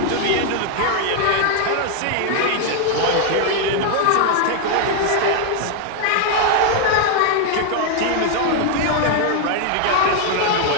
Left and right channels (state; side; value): different; both; correlation 0.00